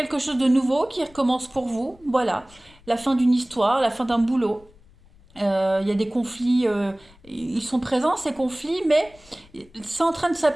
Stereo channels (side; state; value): left; noise; rumble, 27 dB below the sound